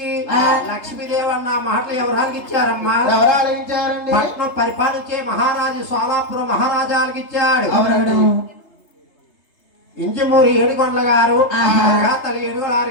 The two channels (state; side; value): late; right; 3.3 ms